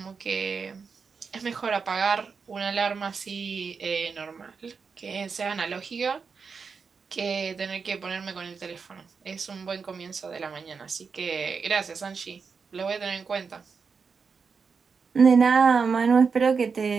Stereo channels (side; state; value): left; quieter; 5.4 dB